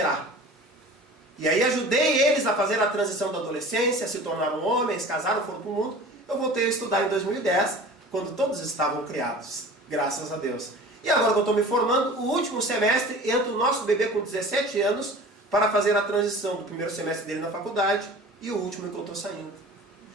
E aí ajudei eles a fazer a transição da adolescência, se tornaram homens, casaram, foram para o mundo. Eu voltei a estudar em 2010, quando todos estavam criados, graças a Deus. E agora que eu estou me formando, o último semestre, entra o nosso bebê com 17 anos para fazer a transição do primeiro semestre dele na faculdade e o último que eu estou saindo.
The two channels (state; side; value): normal; both; correlation 0.41